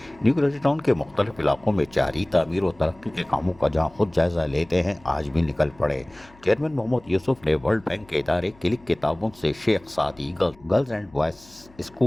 new Karachi town के मुख्तलिफ इलाकों में जारी तामीर और तरक्की के कामों का जहां खुद जायजा लेते हैं, आज भी निकल पड़े। चेयरमैन मोहम्मद यूसुफ ने वर्ल्ड बैंक के इदारे क्लिक के ताउन से शेख सादी girls and boys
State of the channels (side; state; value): left; noise; hum, 26 dB below the sound